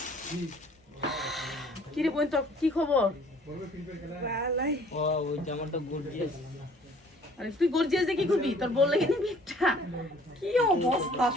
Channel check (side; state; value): both; normal; correlation 0.55